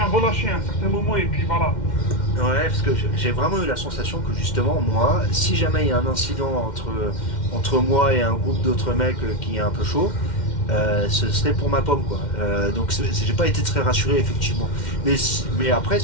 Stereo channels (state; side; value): late; right; 2.1 ms